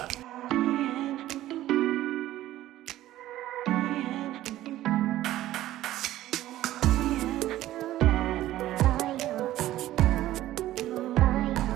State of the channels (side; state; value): left; quieter; 14.4 dB